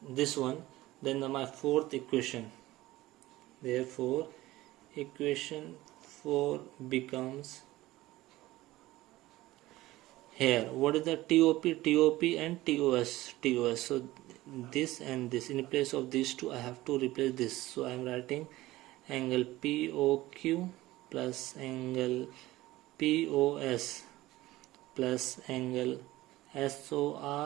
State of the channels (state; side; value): quieter; left; 17.5 dB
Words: this one, then my fourth equation, therefore equation 4 becomes here, what is the TOP and TOS. So this and this, in place of these two I have to replace this. So I am writing angle POQ plus angle POS plus angle